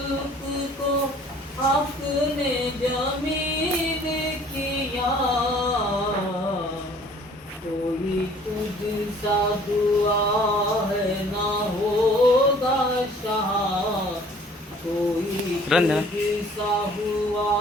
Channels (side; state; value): both; normal; correlation 0.54